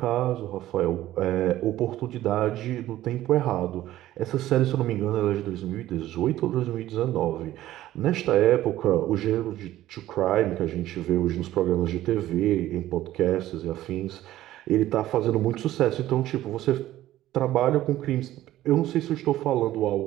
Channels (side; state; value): left; quieter; 14.3 dB